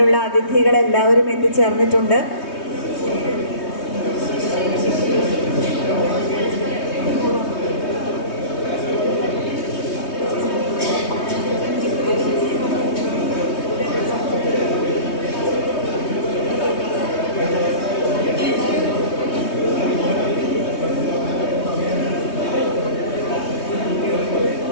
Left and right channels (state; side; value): late; right; 3.2 ms